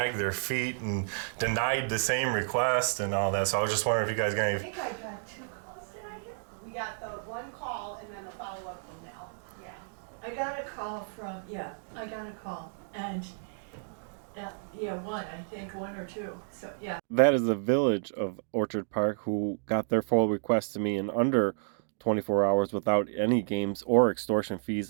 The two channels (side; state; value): left; silent; digital silence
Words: their feet and denied the same request and all that. So I was just wondering if you guys got any. I think I got 2 calls. Did I get? We got the one call and then the follow-up from Mel. Yeah. I got a call from, I got a call. And, one, I think, 1 or 2. So, yeah. That is the village of Orchard Park who got their full request to me in under 24 hours without any games or extortion